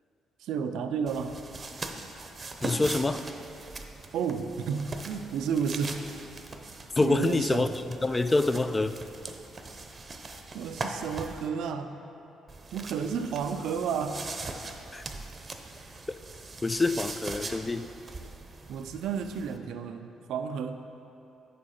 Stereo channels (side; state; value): both; normal; correlation 0.79